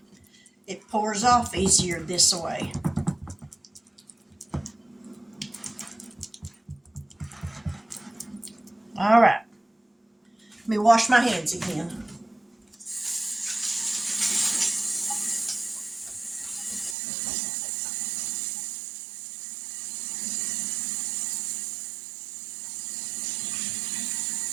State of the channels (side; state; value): left; drops out; at 16.9 s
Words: it pours off easier this way. All right. Let me wash my hands again.